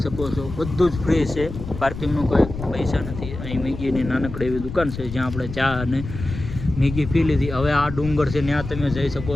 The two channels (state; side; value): noise; left; rumble, 9 dB below the sound